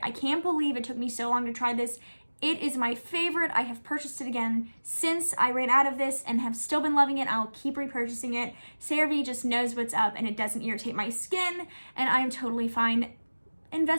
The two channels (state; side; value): inverted; both; correlation -1.00